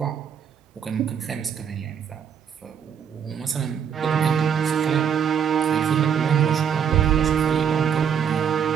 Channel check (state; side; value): quieter; left; 7.9 dB